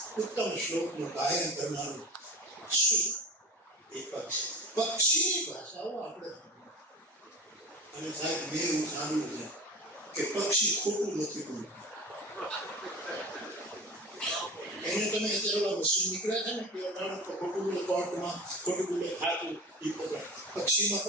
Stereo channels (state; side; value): normal; both; correlation 0.32